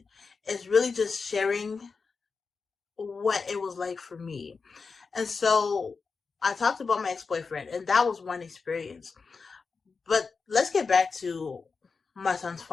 It's really just sharing what it was like for me. And so I talked about my ex-boyfriend, and that was one experience. But let's get back to my son's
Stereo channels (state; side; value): quieter; right; 4.8 dB